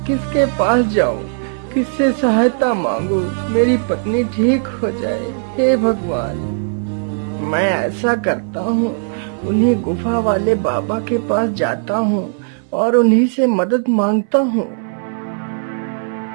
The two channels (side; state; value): left; silent; 64 dB below the other